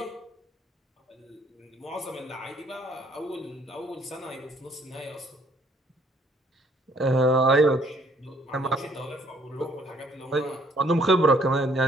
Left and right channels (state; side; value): normal; both; correlation 0.64